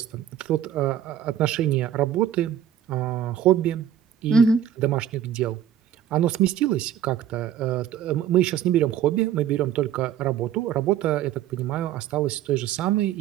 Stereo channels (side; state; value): left; quieter; 9.9 dB